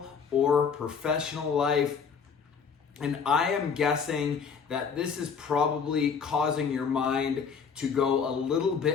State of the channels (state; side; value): quieter; right; 6.2 dB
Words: or professional life, and I am guessing that this is probably causing your mind to go a little